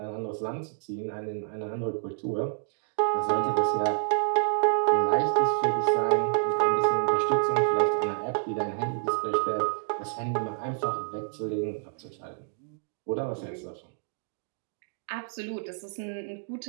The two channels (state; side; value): silent; left; digital silence